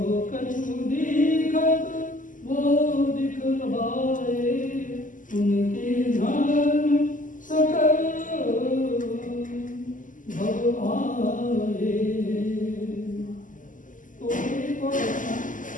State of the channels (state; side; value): late; right; 0.38 ms